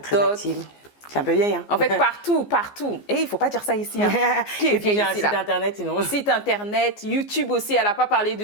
active. C'est un peu vieille, hein. En fait, partout. Et il ne faut pas dire ça ici. Hein. Qui est vieille ici, là? Site internet, sinon. Site internet, YouTube aussi. Elle n'a pas parlé de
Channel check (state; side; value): late; right; 14 ms